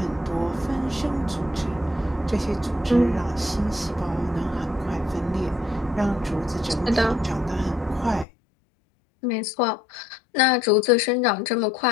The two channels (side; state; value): right; drops out; at 8.2 s